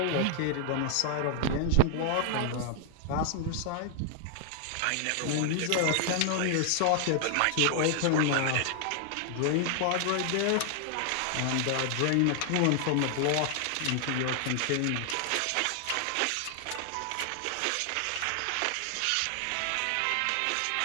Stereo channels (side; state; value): both; different; correlation 0.00